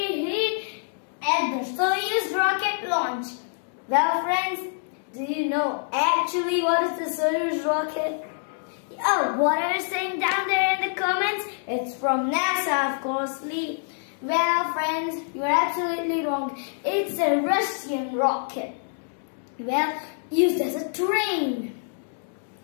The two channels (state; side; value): silent; right; digital silence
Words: here at the Soyuz rocket launch. Well, friends, do you know actually what is the Soyuz rocket? Oh, what are you saying down there in the comments? It's from NASA, of course, Lee. Well, friends, you're absolutely wrong. It's a Russian rocket. Well, used as a train.